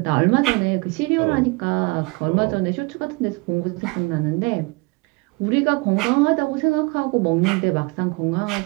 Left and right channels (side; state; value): left; quieter; 27.0 dB